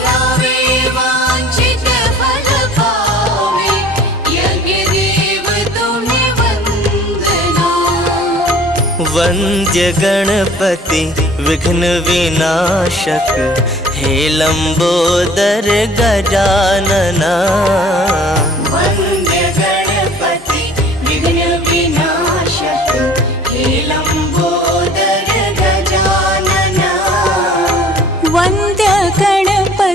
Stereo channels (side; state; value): both; normal; correlation 0.50